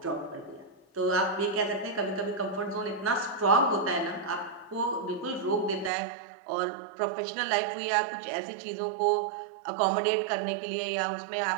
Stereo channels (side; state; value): left; drops out; at 5.9 s